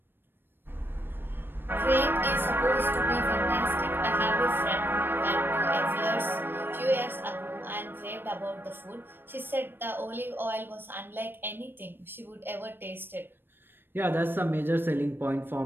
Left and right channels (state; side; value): late; left; 0.098 ms